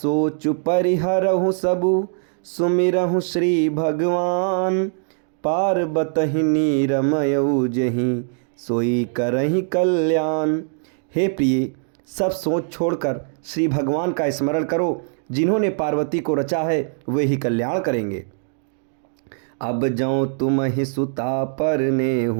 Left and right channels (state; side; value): silent; left; digital silence